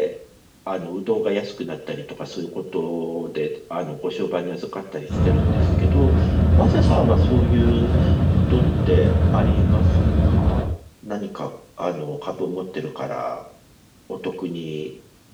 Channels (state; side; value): identical; both; correlation 1.00